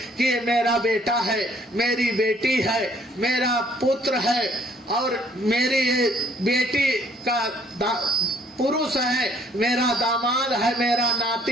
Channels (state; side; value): normal; both; correlation 0.63